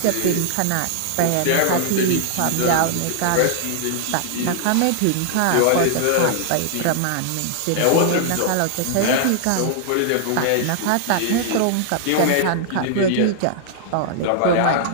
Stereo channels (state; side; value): different; both; correlation -0.01